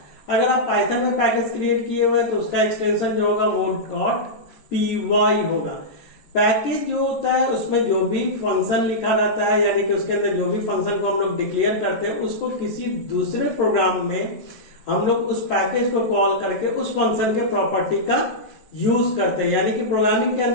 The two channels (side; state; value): right; late; 13 ms